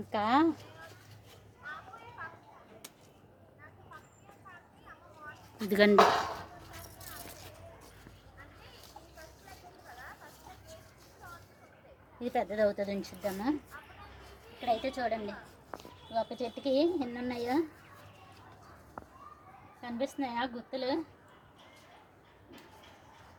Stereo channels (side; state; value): both; identical; correlation 1.00